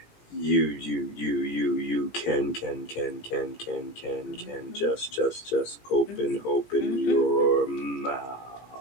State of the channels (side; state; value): right; late; 17 ms